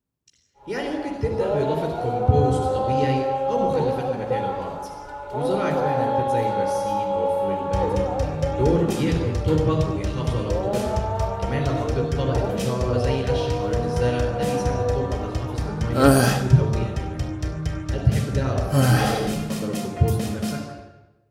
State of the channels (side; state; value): both; identical; correlation 1.00